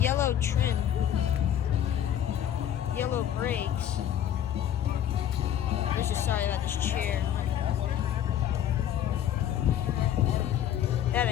trim. Yellow brakes. I'm just sorry about this chair. That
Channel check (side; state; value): right; quieter; 10.4 dB